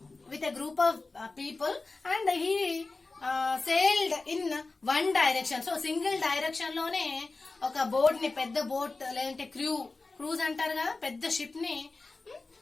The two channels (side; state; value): right; quieter; 3.6 dB